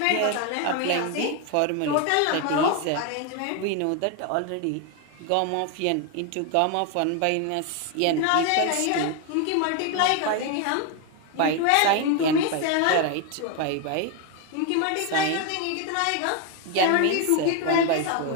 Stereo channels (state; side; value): different; both; correlation 0.01